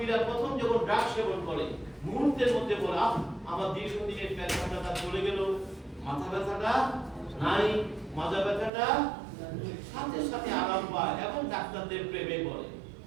প্রথম যখন ড্রাগ সেবন করে মুহূর্তের মধ্যে বলে, আমার দীর্ঘদিনের পেট ব্যথাটা চলে গেল, মাথা ব্যথাটা নাই, মাজা ব্যথাটা সাথে সাথে আরাম পায় এবং ডাক্তারদের প্রেমে পড়ে।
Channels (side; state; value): left; drops out; at 8.7 s